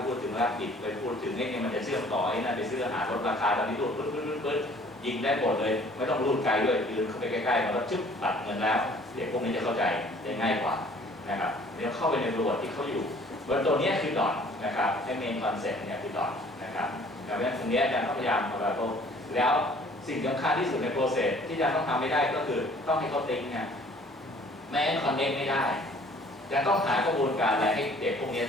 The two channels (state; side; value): normal; both; correlation 0.54